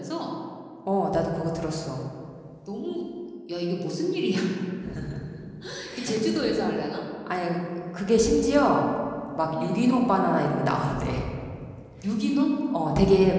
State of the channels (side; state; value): both; identical; correlation 1.00